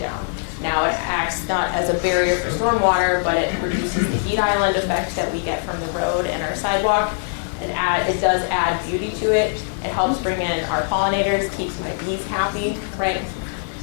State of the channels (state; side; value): silent; right; 56 dB below the other